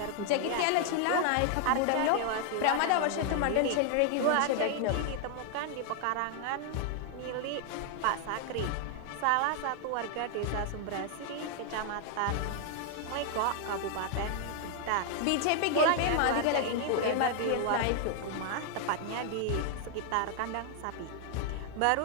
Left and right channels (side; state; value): both; different; correlation 0.00